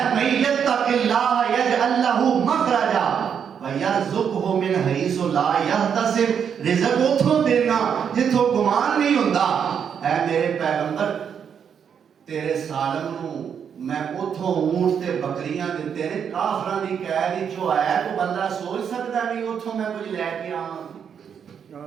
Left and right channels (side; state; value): left; quieter; 7.6 dB